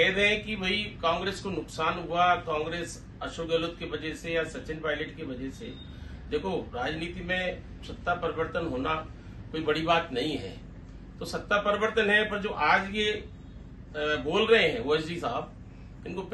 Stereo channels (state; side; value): identical; both; correlation 1.00